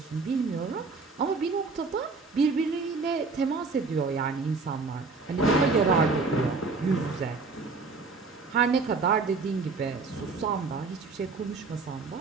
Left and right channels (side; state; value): left; quieter; 4.2 dB